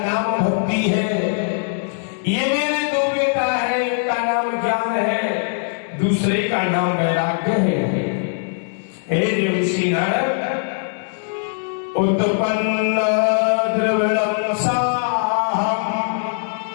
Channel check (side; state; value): right; silent; digital silence